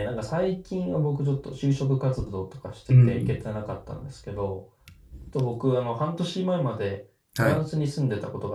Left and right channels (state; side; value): identical; both; correlation 1.00